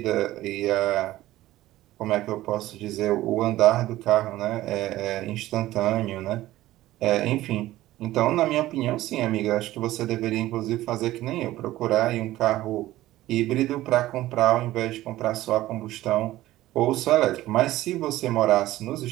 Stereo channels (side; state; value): left; quieter; 15.8 dB